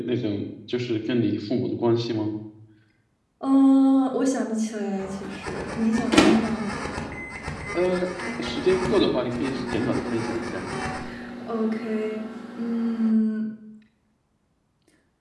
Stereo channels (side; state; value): both; identical; correlation 1.00